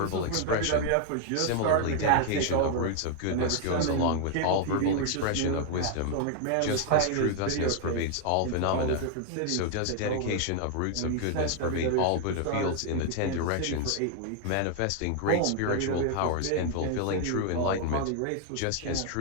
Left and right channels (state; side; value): different; both; correlation 0.00